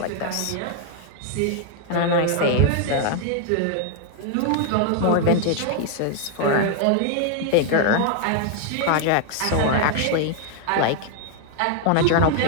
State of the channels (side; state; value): both; different; correlation 0.00